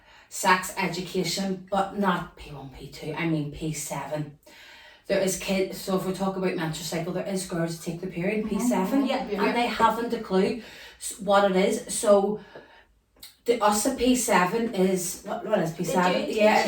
sex education, but not P1, P2, I mean P7. there is kids, so if we talk about menstrual cycle, there is girls who take their period P7 Yeah. and they haven't a clue what it is. So the us at P7 is what is P7? They do Yeah,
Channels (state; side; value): identical; both; correlation 1.00